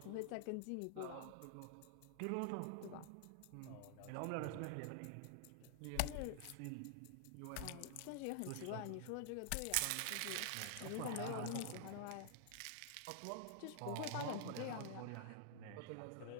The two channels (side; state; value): both; different; correlation 0.00